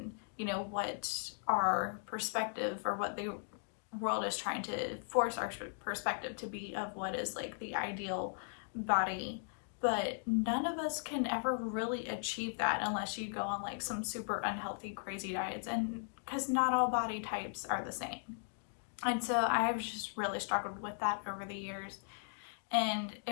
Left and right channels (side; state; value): right; silent; digital silence